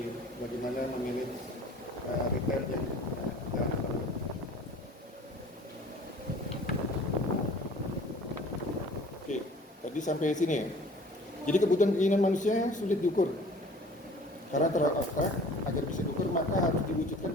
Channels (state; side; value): normal; both; correlation 0.48